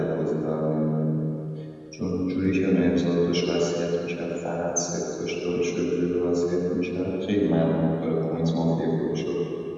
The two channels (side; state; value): both; identical; correlation 1.00